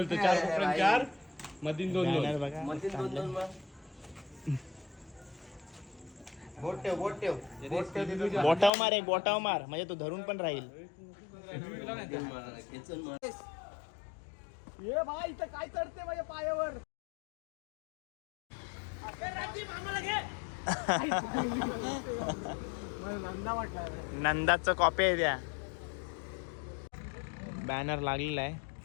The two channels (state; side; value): drops out; right; at 8.7 s